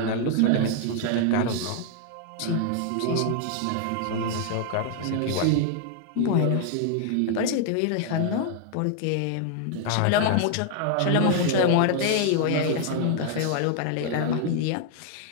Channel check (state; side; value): different; both; correlation 0.00